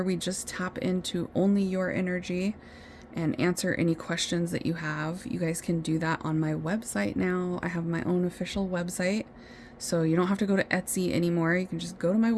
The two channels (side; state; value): both; identical; correlation 1.00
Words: we just tap into only your energy and answer any questions that you have, you guys can do that on my website now. I have my own official website, so you don't have to go to Etsy anymore. You can just go to my